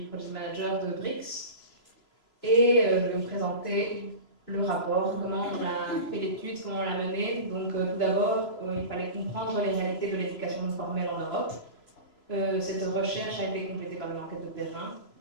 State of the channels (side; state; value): right; late; 3.0 ms